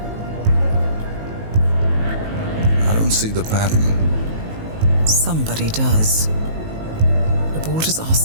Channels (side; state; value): left; late; 19 ms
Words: I don't see the pattern. Somebody does. The board has